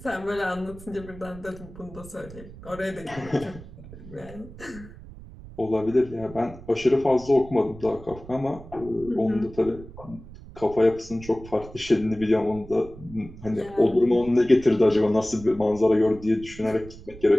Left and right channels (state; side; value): noise; right; rumble, 17 dB below the sound